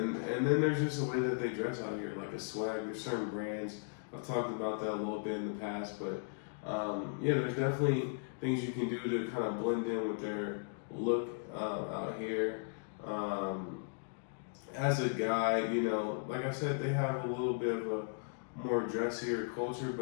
then there's just a way that they dress out here, like a swag. There's certain brands. I've talked about that a little bit in the past, but yeah, there's definitely things you can do to kind of blend in with their look out here. As a guy, like I said, they have a little bit of a more dressier culture,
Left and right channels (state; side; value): silent; right; digital silence